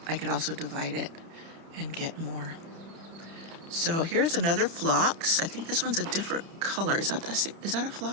I could also divide it and get more. So here's another phlox. I think this one's a different color. Is that a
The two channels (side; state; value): left; late; 30 ms